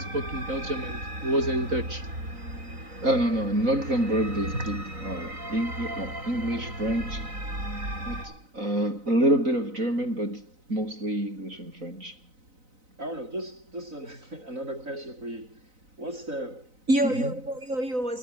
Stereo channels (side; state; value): left; late; 4.0 ms